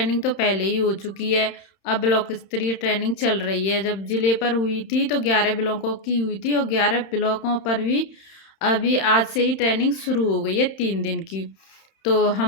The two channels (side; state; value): right; late; 31 ms